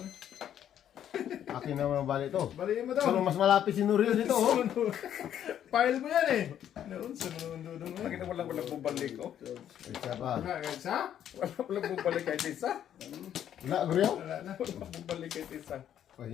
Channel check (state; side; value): quieter; right; 10.2 dB